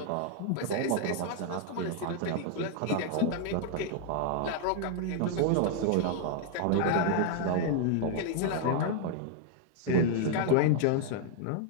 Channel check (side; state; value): both; different; correlation 0.00